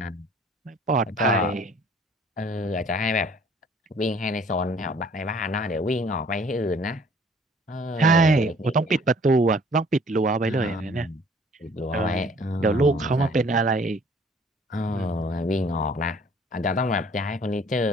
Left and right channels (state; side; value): normal; both; correlation 0.56